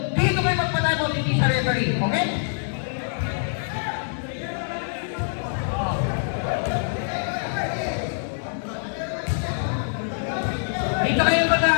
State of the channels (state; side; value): silent; right; digital silence